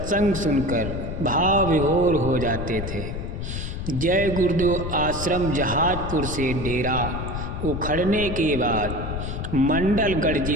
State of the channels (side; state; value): left; noise; rumble, 5 dB below the sound